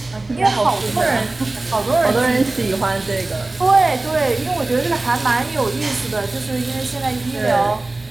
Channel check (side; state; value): left; quieter; 3.1 dB